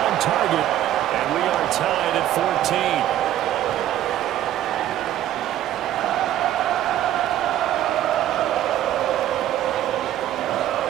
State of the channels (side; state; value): left; quieter; 12.4 dB